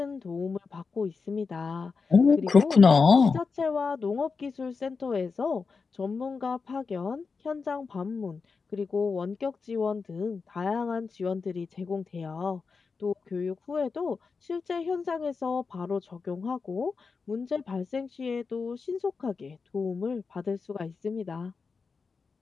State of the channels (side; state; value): right; quieter; 4.9 dB